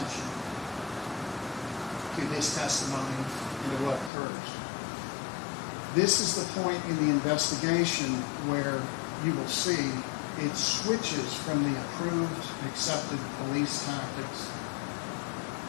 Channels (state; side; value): drops out; right; at 4.1 s